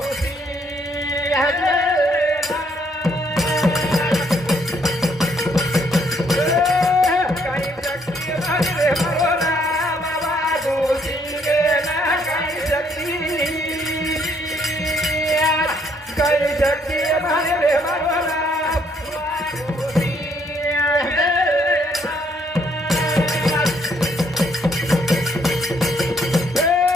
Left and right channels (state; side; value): normal; both; correlation 0.68